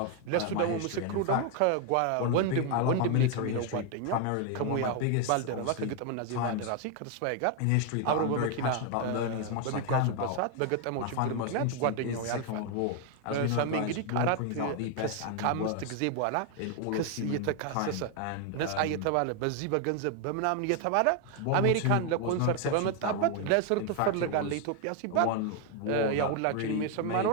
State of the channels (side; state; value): both; different; correlation 0.01